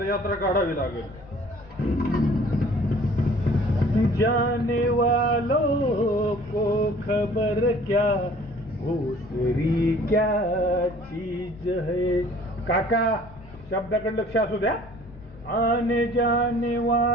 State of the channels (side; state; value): left; noise; rumble, 21 dB below the sound